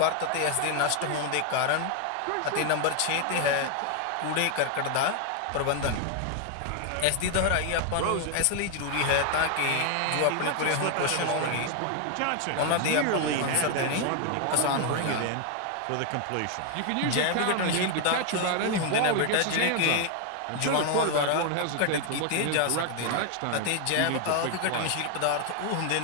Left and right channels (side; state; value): both; different; correlation 0.00